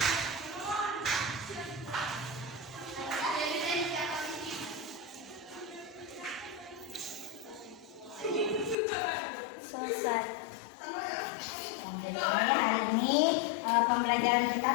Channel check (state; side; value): drops out; right; at 8.8 s